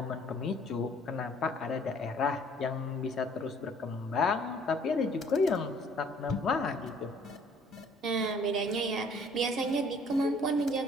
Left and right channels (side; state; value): both; normal; correlation 0.57